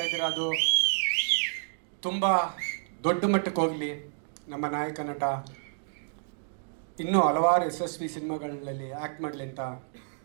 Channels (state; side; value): silent; left; digital silence